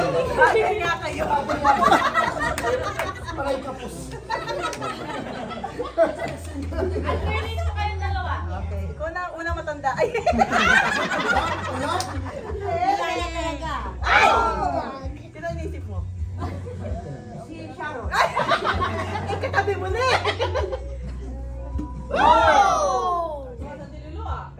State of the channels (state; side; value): identical; both; correlation 1.00